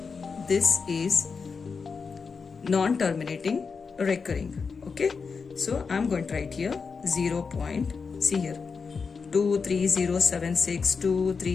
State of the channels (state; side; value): quieter; right; 5.2 dB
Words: this is non-terminating recurring. Okay, so I'm going to write here 0 point. See here, 23076,